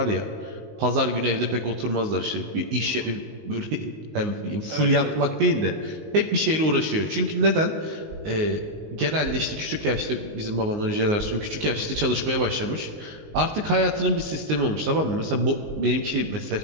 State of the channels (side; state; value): left; late; 19 ms